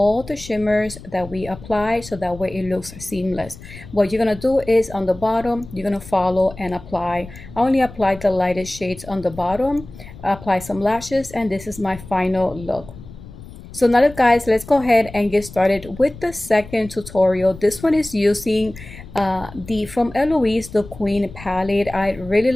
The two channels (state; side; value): noise; left; rumble, 17 dB below the sound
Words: the shimmers that we apply so that way it looks seamless. What you're gonna do is on the bottom, you're gonna follow and apply. I only applied the lightest shades on the bottom, apply some lashes, and this is my final look. So now guys, let's go ahead and get started with the second tutorial. This one is using the from Eloise, the Queen palette. I really